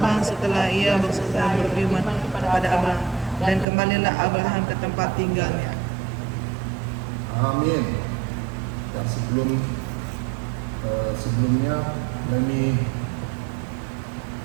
setelah ia berfirman kepada Abraham, dan kembalilah Abraham ke tempat tinggalnya. Amin. Dan sebelumnya, let me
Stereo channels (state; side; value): drops out; left; at 3.7 s